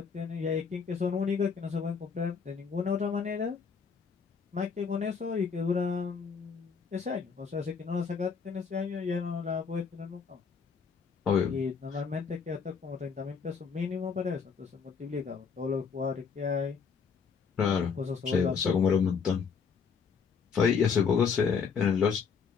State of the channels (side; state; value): right; quieter; 5.9 dB